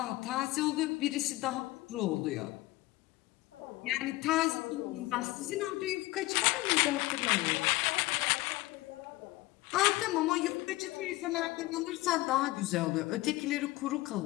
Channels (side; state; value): right; quieter; 19.4 dB